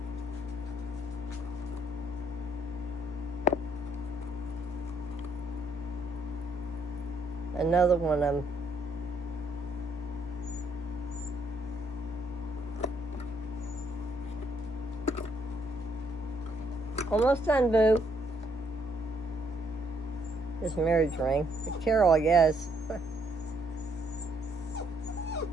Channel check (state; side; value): normal; both; correlation 0.70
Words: Another one of them. Almost done, Boo. This marriage ring. The Carol, I guess.